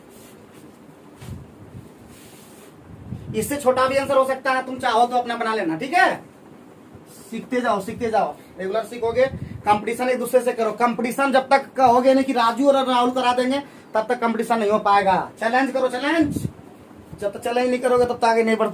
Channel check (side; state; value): both; identical; correlation 1.00